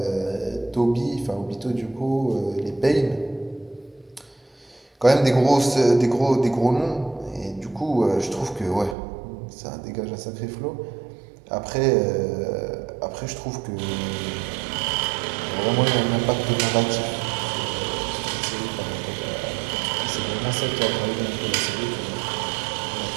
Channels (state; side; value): drops out; left; at 9.0 s